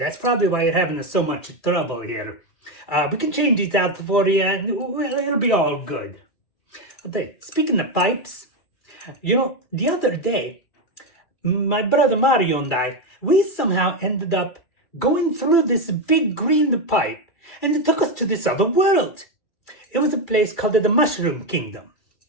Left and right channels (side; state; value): right; late; 2.4 ms